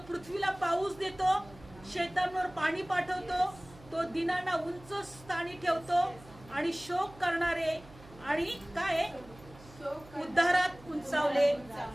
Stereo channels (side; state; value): right; noise; hum, 21 dB below the sound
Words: पृथ्वीला पाऊस देतो, शेतांवर पाणी पाठवतो, तो दिनांना उंच स्थानी ठेवतो आणि शोक करणारे आणि काय उद्धारात उंचावले